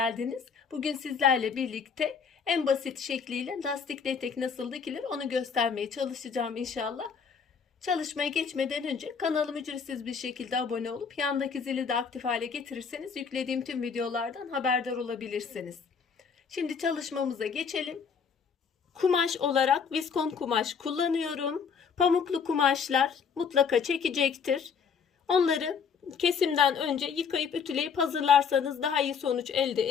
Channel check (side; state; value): right; quieter; 6.2 dB